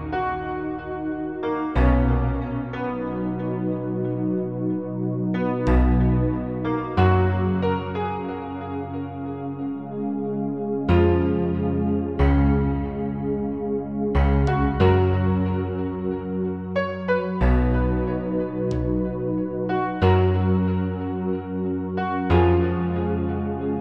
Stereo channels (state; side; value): identical; both; correlation 1.00